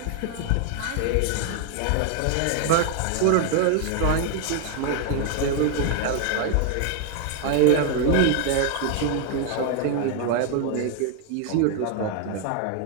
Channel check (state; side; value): different; both; correlation 0.00